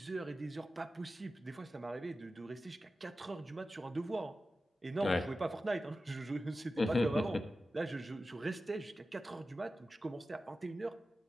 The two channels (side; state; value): both; normal; correlation 0.93